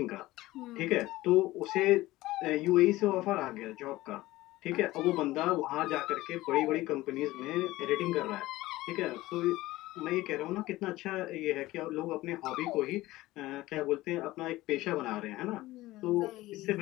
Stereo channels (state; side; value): quieter; right; 17.8 dB